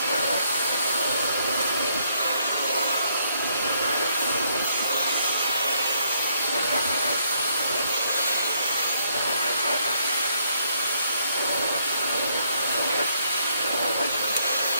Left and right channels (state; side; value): inverted; both; correlation -0.70